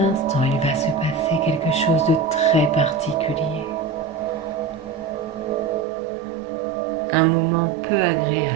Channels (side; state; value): left; drops out; at 5.9 s